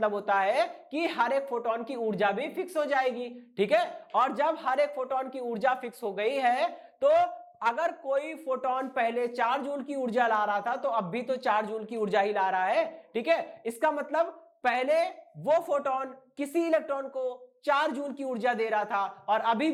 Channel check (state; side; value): identical; both; correlation 1.00